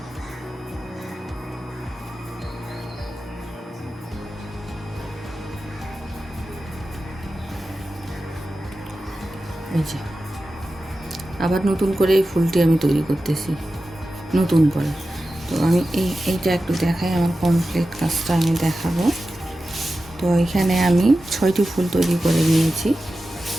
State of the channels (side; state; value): both; normal; correlation 0.93